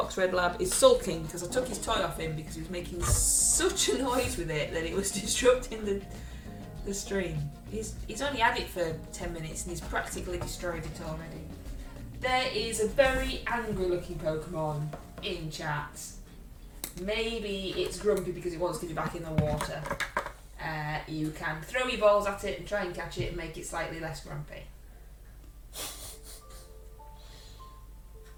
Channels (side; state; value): both; identical; correlation 1.00